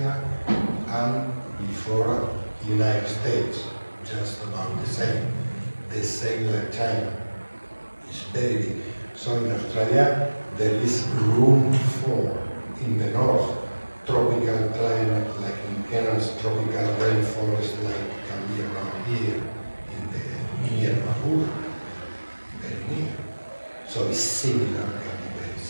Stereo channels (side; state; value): both; inverted; correlation -1.00